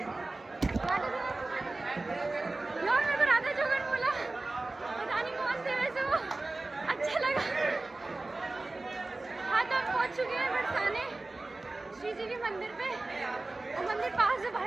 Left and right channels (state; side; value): quieter; left; 3.1 dB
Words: यार मेरे को राधा जोगन बोला, पता नहीं कौन थे वैसे वो, अच्छा लगा। हाँ तो हम पहुंच चुके हैं बरसाने श्री जी के मंदिर पे, और मंदिर पास है